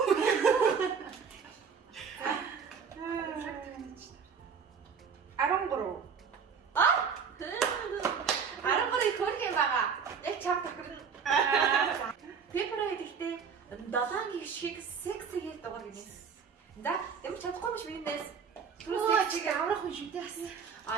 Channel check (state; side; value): quieter; left; 6.3 dB